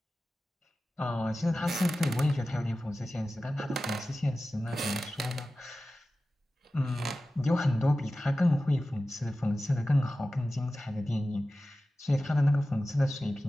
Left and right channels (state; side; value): normal; both; correlation 0.95